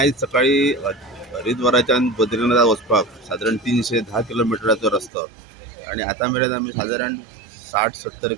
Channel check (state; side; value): drops out; left; at 5.1 s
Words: सकाळी हरिद्वाराच्यान बद्रीनाथ वचपाक साधारण 310 किलोमिटराचो रस्तो आणि आता मेरेन आमी साधारण 60-70